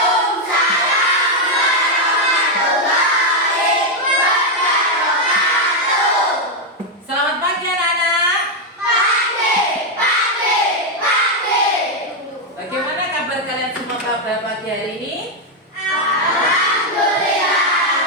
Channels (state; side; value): normal; both; correlation 0.02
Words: warahmatullahi wabarakatuh. Selamat pagi anak-anak. Pagi. Bagaimana kabar kalian semua pada pagi hari ini? Alhamdulillah